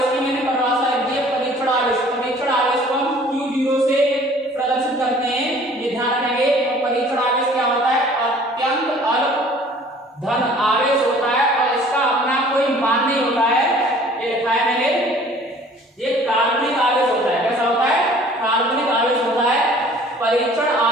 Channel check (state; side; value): normal; both; correlation 0.51